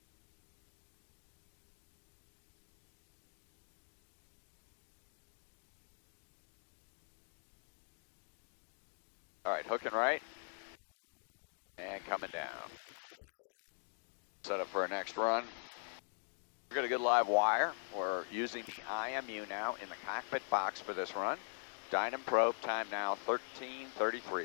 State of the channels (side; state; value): right; silent; digital silence